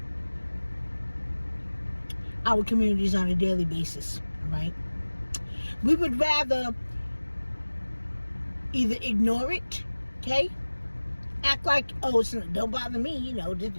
our communities on a daily basis, right? We would rather either ignore it, okay? Act like, don't bother me,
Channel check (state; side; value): inverted; both; correlation -1.00